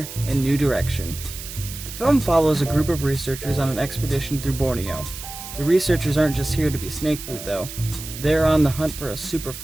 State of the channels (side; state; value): right; noise; hiss, 11 dB below the sound